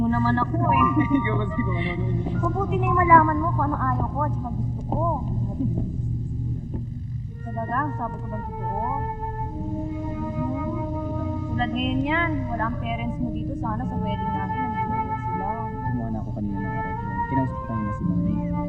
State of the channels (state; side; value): identical; both; correlation 1.00